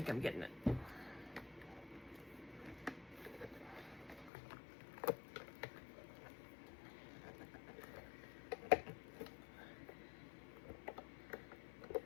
I'm getting it.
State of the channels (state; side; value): drops out; right; at 4.3 s